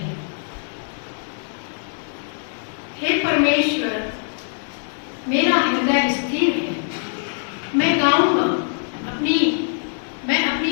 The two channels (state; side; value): silent; right; 62 dB below the other